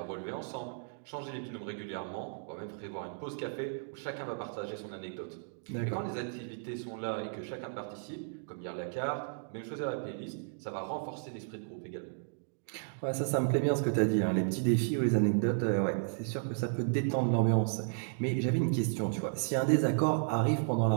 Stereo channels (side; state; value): left; silent; digital silence